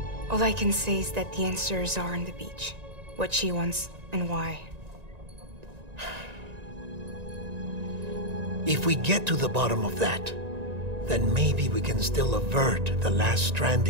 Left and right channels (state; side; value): late; left; 1.9 ms